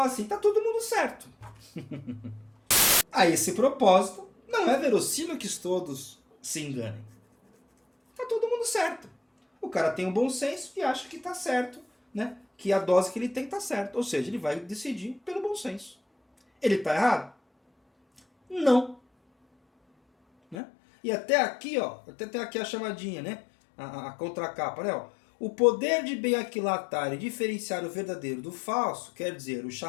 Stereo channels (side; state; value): right; drops out; at 20.6 s